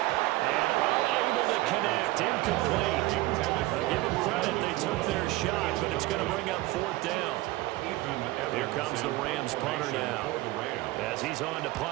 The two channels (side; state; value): left; quieter; 18.7 dB